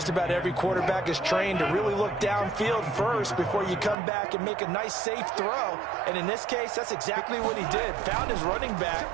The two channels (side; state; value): left; drops out; at 4.0 s